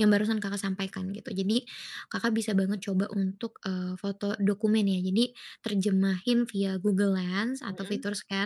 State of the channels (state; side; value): identical; both; correlation 1.00